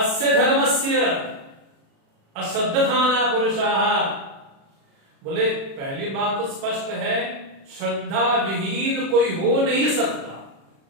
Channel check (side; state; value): left; late; 36 ms